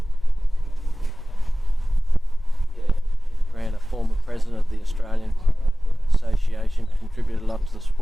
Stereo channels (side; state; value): both; normal; correlation 0.97